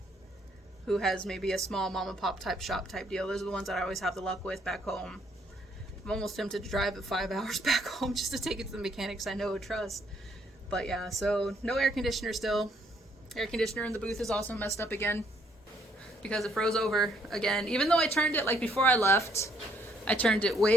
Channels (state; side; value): normal; both; correlation 0.68